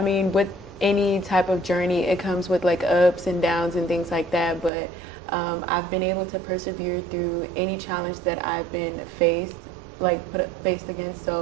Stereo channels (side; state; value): left; drops out; at 4.7 s